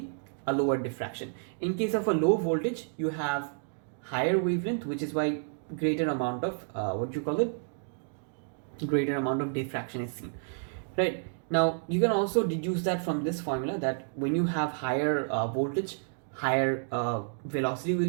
a lower diffraction. In case of a low voltage, you have higher wavelength, which is why greater amount of greater amount of diffraction is seen, right? Now you can also deduce that from this formula, that when you have higher voltage, higher velocity will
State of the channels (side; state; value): left; silent; digital silence